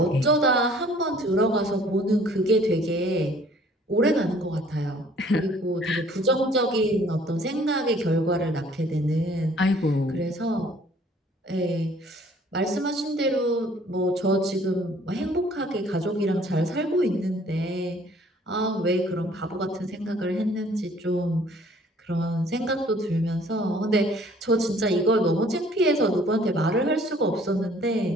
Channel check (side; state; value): both; normal; correlation 0.56